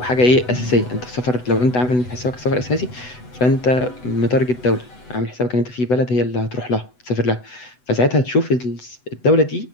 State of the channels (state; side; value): late; right; 8.0 ms